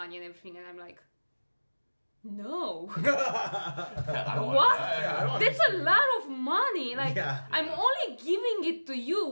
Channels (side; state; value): both; inverted; correlation -1.00